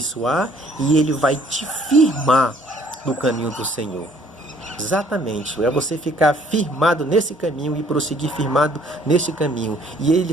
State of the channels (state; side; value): normal; both; correlation 0.60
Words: e ele vai te firmar no caminho do Senhor. Exatamente, é você ficar firmado nesse caminho e prosseguir firmado nesse caminho. E ele